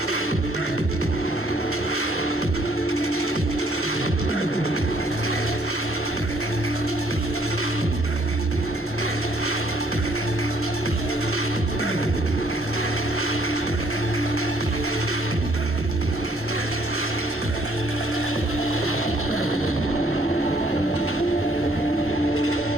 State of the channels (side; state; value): both; normal; correlation 0.63